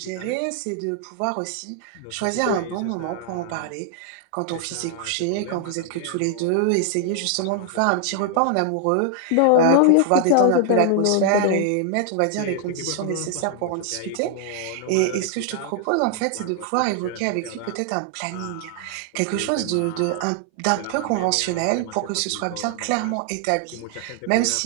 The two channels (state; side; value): different; both; correlation 0.00